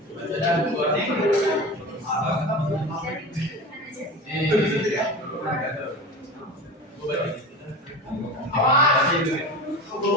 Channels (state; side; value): normal; both; correlation 0.31